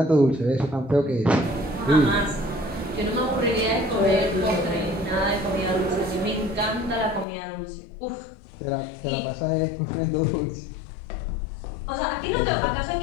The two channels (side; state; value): right; drops out; at 7.2 s